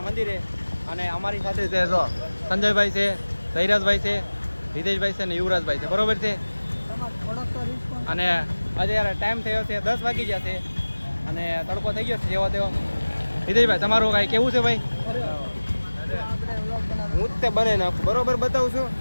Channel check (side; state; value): both; inverted; correlation -1.00